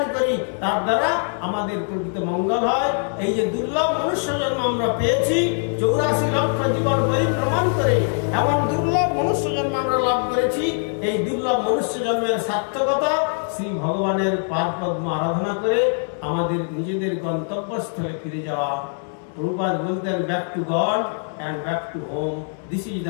করি, তার দ্বারা আমাদের প্রকৃত মঙ্গল হয়। এই যে দুর্লভ মনুষ্য জন্ম আমরা পেয়েছি, 84 লক্ষ জীবন পরিভ্রমণ করে এমন দুর্লভ মনুষ্য জন্ম আমরা লাভ করেছি। এই দুর্লভ মনুষ্য জন্মের সার্থকতা শ্রী ভগবানের পাদপদ্ম আরাধনা করে আমাদের নিজেদের গন্তব্যস্থলে ফিরে যাওয়া। প্রভুপাদ বলতেন, back to god and back to home. This is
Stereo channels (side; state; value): right; silent; 60 dB below the other